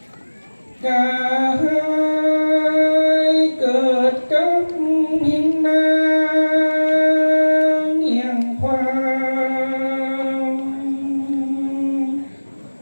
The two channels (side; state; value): both; inverted; correlation -1.00